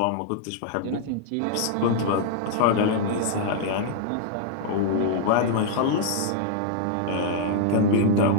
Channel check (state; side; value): different; both; correlation -0.01